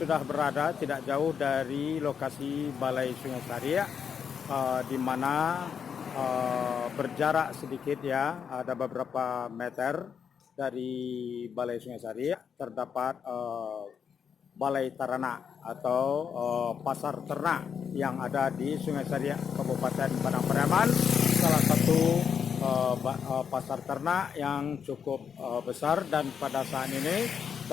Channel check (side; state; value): right; quieter; 7.2 dB